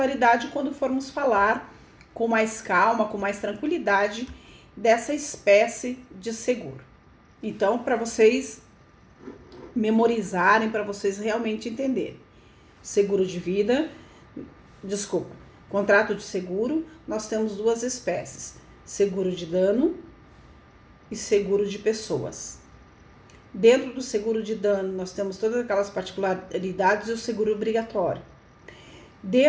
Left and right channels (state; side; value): identical; both; correlation 1.00